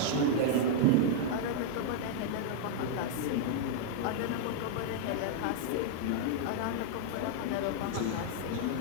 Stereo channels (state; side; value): different; both; correlation -0.01